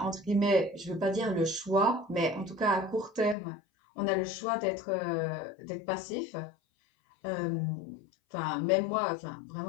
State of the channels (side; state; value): right; drops out; at 3.4 s